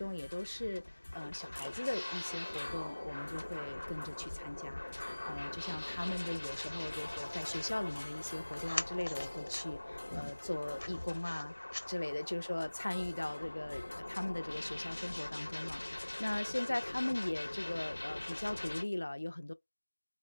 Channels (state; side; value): inverted; both; correlation -1.00